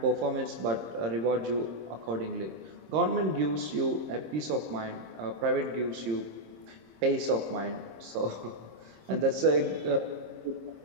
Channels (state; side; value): late; left; 26 ms